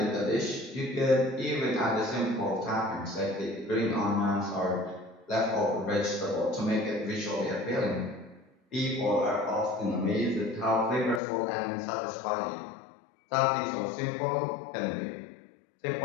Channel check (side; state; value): right; drops out; at 11.2 s